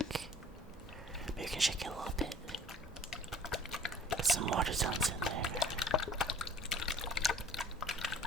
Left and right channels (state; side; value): normal; both; correlation 0.51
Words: Maybe you can shake it a little bit. Get some water sounds in there.